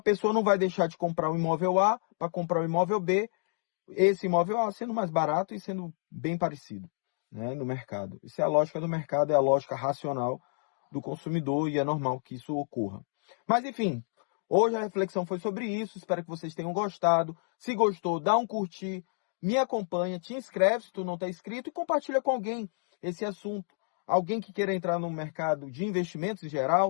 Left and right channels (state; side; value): silent; right; 58 dB below the other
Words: não vai deixar de comprar o imóvel A para comprar o imóvel B, esse imóvel A sendo mais barato e sendo bem parecido, né, no mercado. Isso é a lógica do mercado, é a lógica racional do consumidor e é normal que isso ocorra. Mas enfim, hoje a reflexão foi sobre isso, espero que vocês tenham gostado. Se gostou, dá um curtir, me acompanha, te inscreve se tu não está inscrito e compartilha com alguém esse assunto. Alguém que queira entrar no mercado de investimentos em